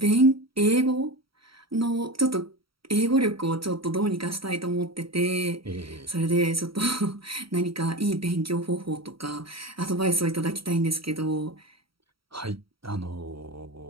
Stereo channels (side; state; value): left; late; 0.75 ms